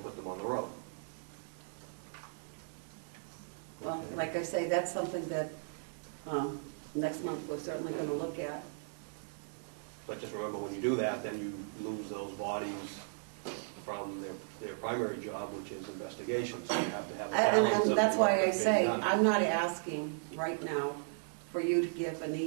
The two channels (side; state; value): left; silent; digital silence